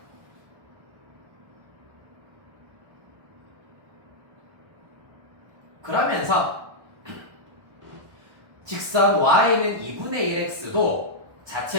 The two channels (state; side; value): late; left; 1.1 ms